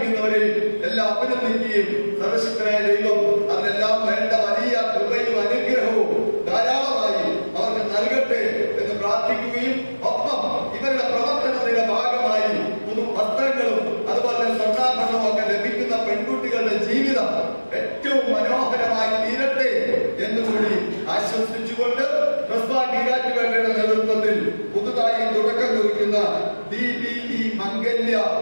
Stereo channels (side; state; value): both; inverted; correlation -1.00